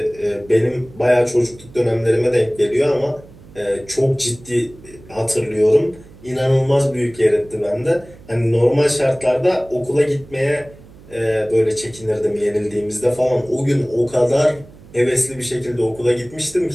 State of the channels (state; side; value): noise; right; hum, 22 dB below the sound